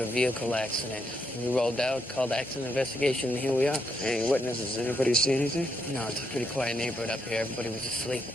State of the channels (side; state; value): both; normal; correlation 0.78